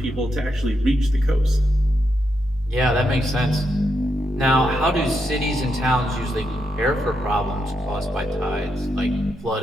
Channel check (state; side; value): normal; both; correlation 0.82